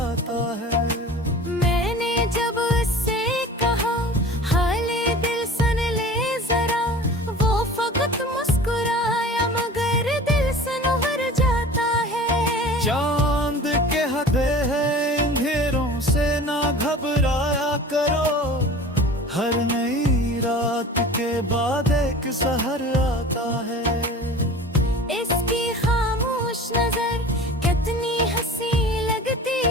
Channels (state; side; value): normal; both; correlation 0.40